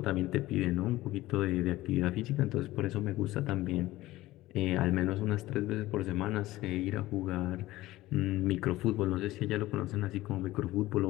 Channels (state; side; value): quieter; right; 17.1 dB